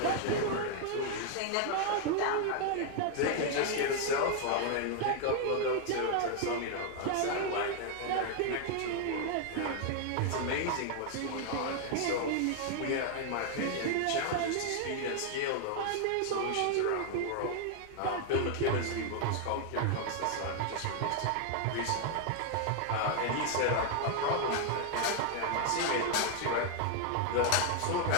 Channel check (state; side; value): different; both; correlation 0.00